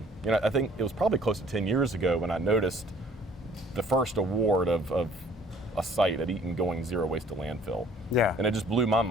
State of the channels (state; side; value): normal; both; correlation 0.56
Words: think it was probably close to 10 years ago when I noticed the first award of a site at Eaton going zero waste to landfill. Yeah. And it just blew my